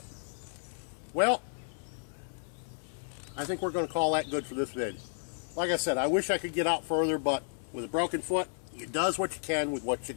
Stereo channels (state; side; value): silent; right; 56 dB below the other